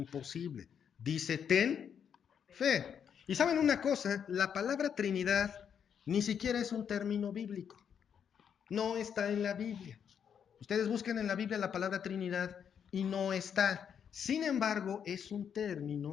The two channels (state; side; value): quieter; right; 7.9 dB